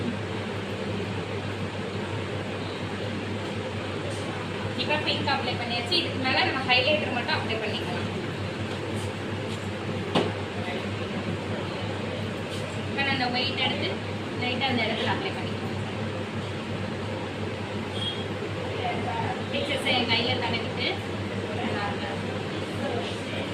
இப்போ பிங்க் அப்ளை பண்ணியாச்சு. இதுக்கு மேலே நம்ம ஹைலைட்டர் மட்டும் அப்ளை பண்ணிக்கலாம். இப்போ நான் அந்த ஒயிட் எடுத்து லைட்டாக அந்த இடத்துல அப்ளை பண்ணிக்கலாம். எக்ஸஸை என் கையில் தடவிட்டு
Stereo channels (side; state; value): both; identical; correlation 1.00